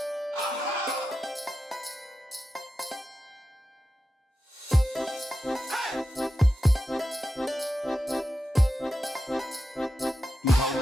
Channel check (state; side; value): normal; both; correlation 0.91